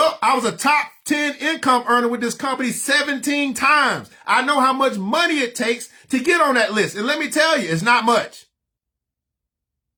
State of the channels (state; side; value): identical; both; correlation 1.00